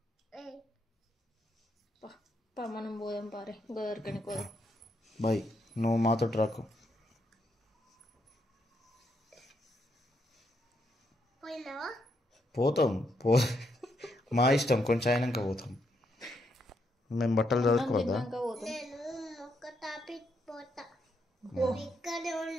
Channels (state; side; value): normal; both; correlation 0.78